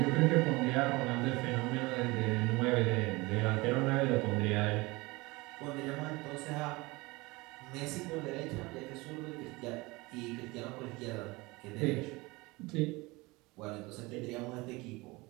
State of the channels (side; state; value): left; quieter; 23.4 dB